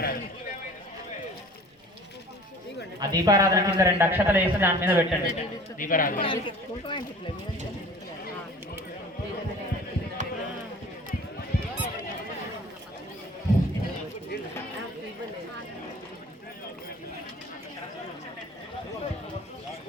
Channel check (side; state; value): both; normal; correlation 0.45